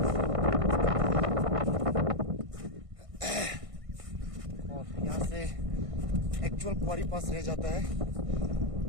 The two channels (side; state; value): left; late; 1.5 ms